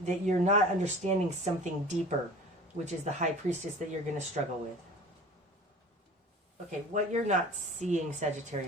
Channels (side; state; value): both; normal; correlation 0.42